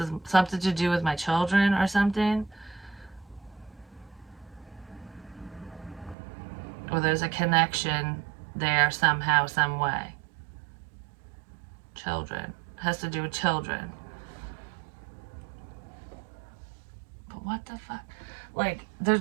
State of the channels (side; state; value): left; drops out; at 6.2 s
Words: something to do with my children or something. Or there's a connection there somehow, some way. Children. Has to do with children. But what the fuck? Like,